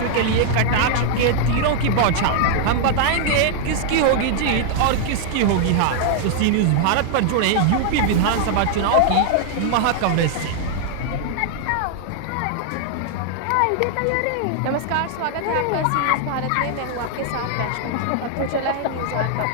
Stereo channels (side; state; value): both; different; correlation -0.01